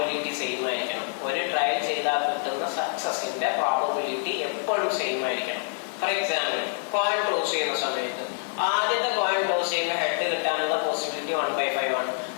സെയിം ആയിരിക്കണം. ഒരു ട്രയൽ ചെയ്താൽ കിട്ടുന്ന സക്സസിന്റെ പ്രോബബിലിറ്റി എപ്പോഴും സെയിം ആയിരിക്കണം. ഫോർ എക്സാമ്പിൾ, കോയിൻ ടോസ് ചെയ്യുന്ന സമയത്ത് ആദ്യത്തെ കോയിൻ ടോസ് ചെയ്യുമ്പോൾ ഹെഡ് കിട്ടാനുള്ള പോസിബിലിറ്റി 1/5 ആണ്.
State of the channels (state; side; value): silent; right; 59 dB below the other